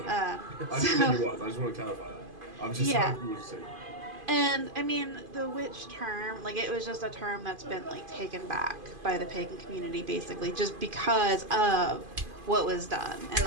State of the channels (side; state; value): left; late; 2.5 ms